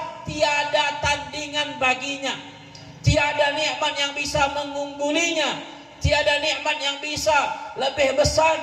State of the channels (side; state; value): both; identical; correlation 1.00